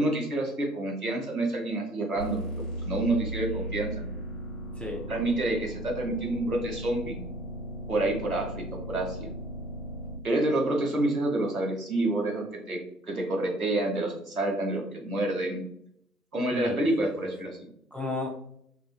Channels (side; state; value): both; normal; correlation 0.58